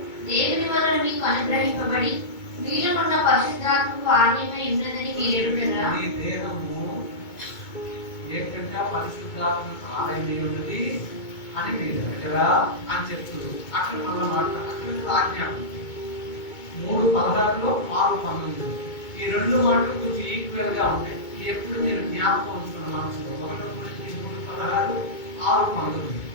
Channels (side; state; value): right; late; 2.2 ms